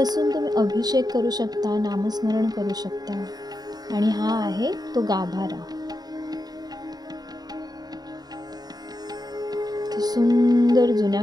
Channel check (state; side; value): late; left; 0.19 ms